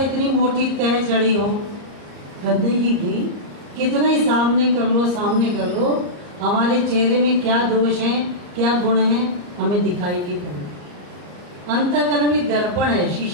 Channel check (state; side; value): late; left; 34 ms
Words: मोटी तह चढ़ी हो गंदगी की, कितना ही सामने कर लो, हमारे चेहरे में क्या दोष हैं, क्या गुण हैं, हमें दिखाई नहीं पड़े। अंतःकरण भी दर्पण है,